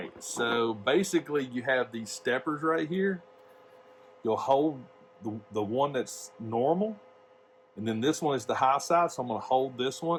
so basically you have these steppers right here. You'll hold the one that's normal, and then this one is the high side, so I'm going to hold this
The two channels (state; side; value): identical; both; correlation 1.00